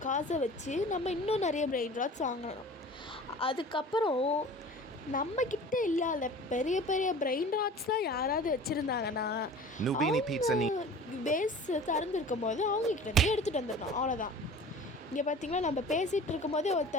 காசை வச்சு நம்ம இன்னும் நிறைய பிரெயின் ராட்ஸ் வாங்கணும். அதுக்கப்புறம் நம்மக்கிட்ட இல்லாத பெரிய பெரிய பிரெயின் ராட்ஸ்லாம் யாராவது வச்சுருந்தாங்கன்னா பேஸ் திறந்துருக்கும் போது அவங்கக்கிட்டேருந்து எடுத்துகிட்டு வந்துடணும். அவ்வளோதான். இங்கே பார்த்தீங்களா, நம்ம பேசிகிட்டு இருக்கும் போதே ஒரு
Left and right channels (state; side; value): normal; both; correlation 0.41